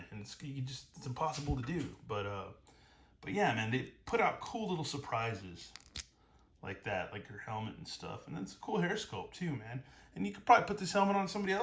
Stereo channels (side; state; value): both; identical; correlation 1.00